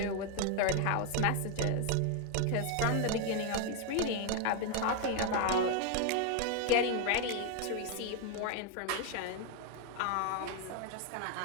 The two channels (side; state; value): both; different; correlation 0.01